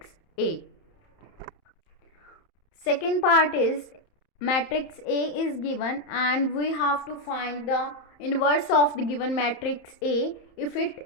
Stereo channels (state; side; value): late; right; 31 ms